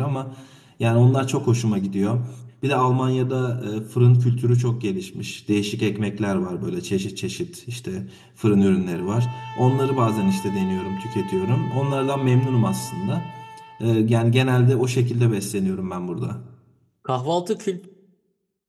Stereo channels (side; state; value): both; identical; correlation 1.00